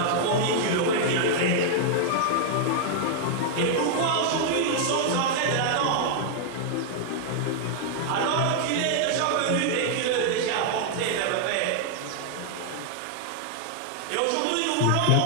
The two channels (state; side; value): different; both; correlation -0.01